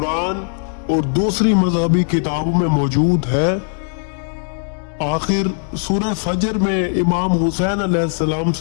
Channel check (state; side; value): silent; right; digital silence